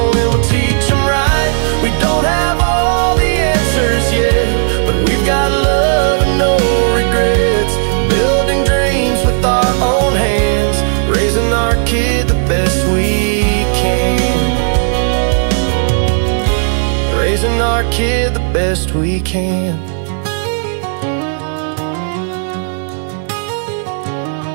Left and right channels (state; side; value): silent; left; digital silence